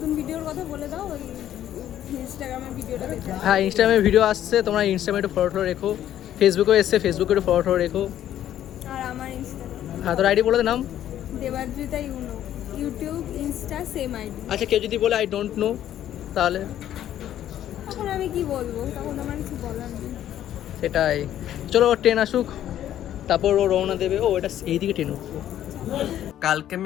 ভিডিওর কথা বলে দাও, ওই ইনস্টাগ্রামের ভিডিওটা দেখে। হ্যাঁ ইনস্টাগ্রামে ভিডিও আসছে, তোমরা ইনস্টাগ্রামে একটু ফলো রেখো। ফেসবুকেও এসছে, ফেসবুকে একটু ফলো রেখো। আর আমার ইনস্টাগ্রাম হ্যাঁ তোর আইডি বলে দে নাম। Debadrita you know, YouTube Insta same ID. আচ্ছা কেউ যদি বলে আই ডোন্ট নো, তাহলে তখন আমি কি বলবো, তখন আমার কিছু বলার নেই। সেটাই। চলো ট্রেন আসুক, তারপর ও রওনা দেবে। ও এটা এইদিকে ট্রেন উঠলো। কালকে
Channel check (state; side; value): quieter; right; 11.6 dB